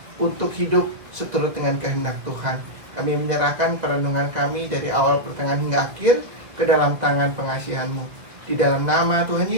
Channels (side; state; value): left; late; 2.2 ms